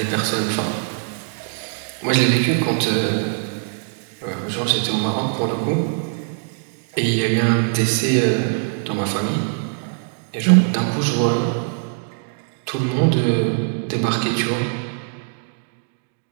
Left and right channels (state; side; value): silent; left; digital silence